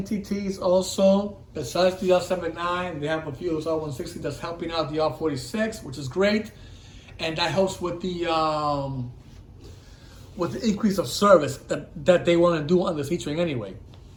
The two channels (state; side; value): identical; both; correlation 1.00